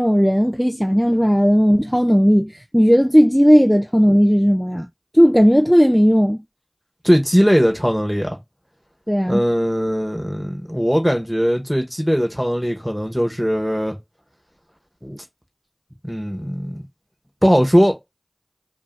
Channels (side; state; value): both; identical; correlation 1.00